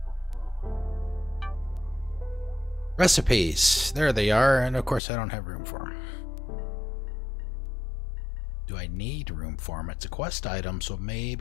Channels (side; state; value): right; drops out; at 5.0 s